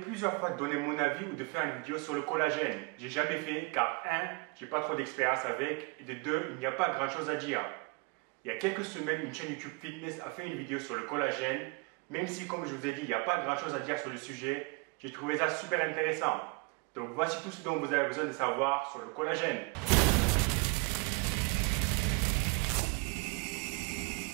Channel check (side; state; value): left; quieter; 30.2 dB